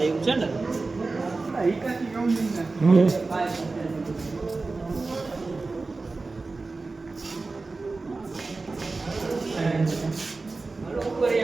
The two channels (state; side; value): quieter; left; 3.7 dB